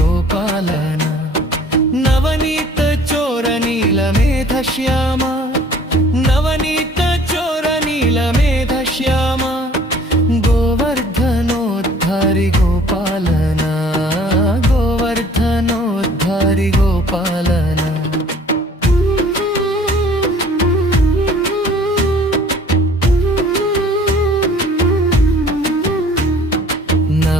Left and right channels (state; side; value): normal; both; correlation 0.53